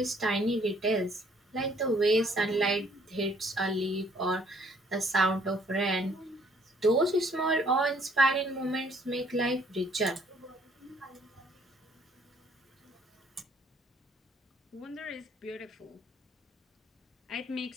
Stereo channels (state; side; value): normal; both; correlation 0.63